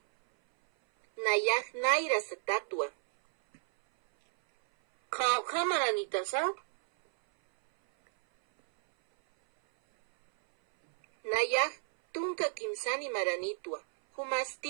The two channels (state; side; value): silent; left; 57 dB below the other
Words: Nayaj Naira satatua. Kamaranitasa. Nayaj tunka kimsani maranitua.